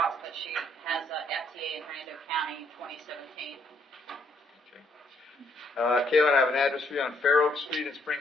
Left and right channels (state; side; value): normal; both; correlation 0.70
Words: but she has a FTA in Hernando County in 2017. Okay. Kaylin, I have an address for you on Fair Oak Street in